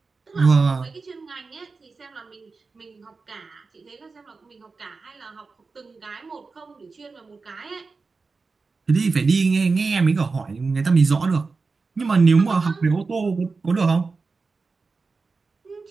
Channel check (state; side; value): quieter; left; 4.3 dB